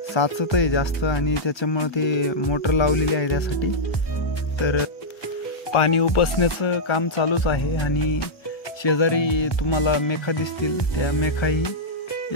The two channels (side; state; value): right; late; 1.3 ms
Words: साचत आहे जास्त आणि त्याच्यामुळे ते मोटर लावलेली आहे त्यासाठी. तर पाणी उपसण्याचं काम चालूच आहे आणि शेजारी तुम्हाला मेखा दिसतील. त्या मेखाही